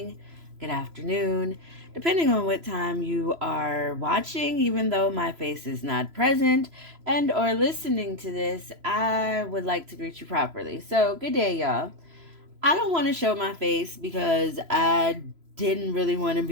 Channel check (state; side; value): late; left; 3.0 ms